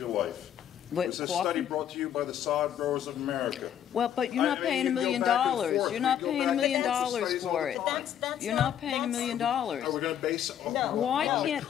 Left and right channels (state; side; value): quieter; right; 9.9 dB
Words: life. What, It's a coffee? study brought to you by the Sod Growers of America. Well, but you're not I mean, paying you $1 can go million. back and forth. You're not We go paying $1 back million and forth. Studies all for the it. time. You're not paying $1 million. Are we going to base it No. Why on the can't,